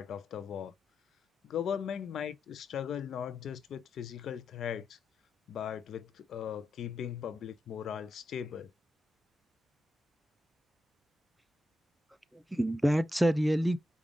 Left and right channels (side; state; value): both; normal; correlation 0.87